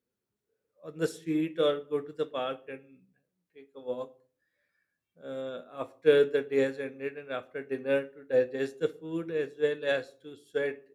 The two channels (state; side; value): identical; both; correlation 1.00